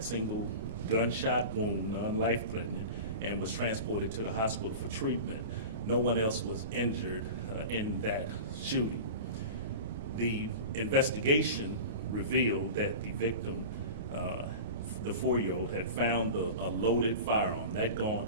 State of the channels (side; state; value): both; inverted; correlation -0.32